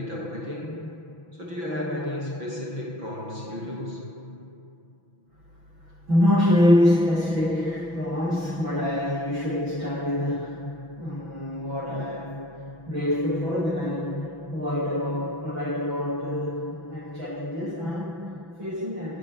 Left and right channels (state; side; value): late; left; 6.0 ms